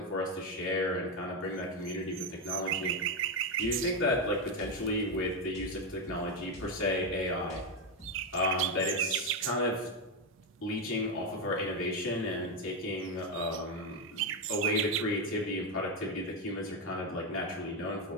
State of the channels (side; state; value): both; normal; correlation 0.08